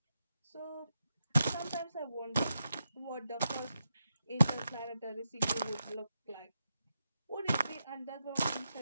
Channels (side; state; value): both; inverted; correlation -0.85